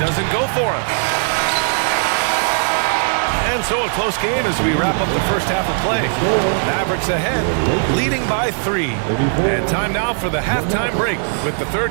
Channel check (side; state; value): left; silent; digital silence